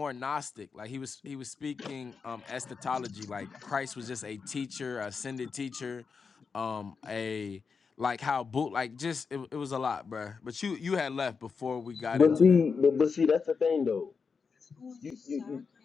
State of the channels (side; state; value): right; quieter; 5.4 dB